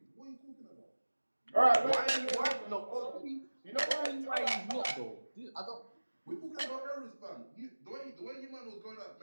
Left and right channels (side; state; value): both; inverted; correlation -1.00